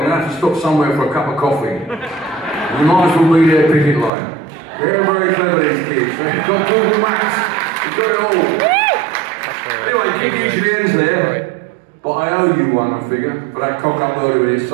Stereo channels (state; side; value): drops out; left; at 4.1 s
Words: going to have to stop somewhere for a cup of coffee. We might as well be their picket line. They're very clever, these kids. They've got Google Maps. They've got it all. Anyway, gig usually ends there, but I owe you one, I figure, for that cock up earlier with this,